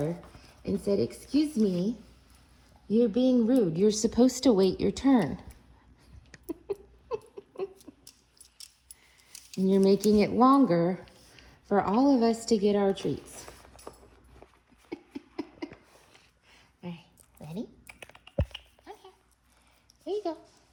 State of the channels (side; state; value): both; identical; correlation 1.00